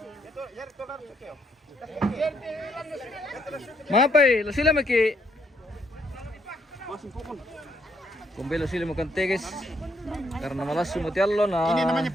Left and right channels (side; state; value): both; normal; correlation 0.72